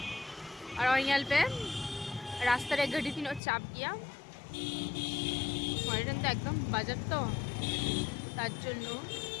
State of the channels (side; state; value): right; drops out; at 3.4 s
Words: আর ওই ngal pe রাস্তার এক গাড়ি তিন চাপ গিয়া ময়দান তো একদম বাজার তো তার জন্য